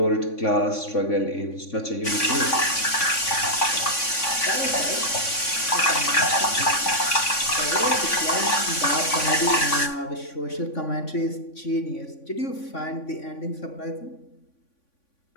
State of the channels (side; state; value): right; late; 3.5 ms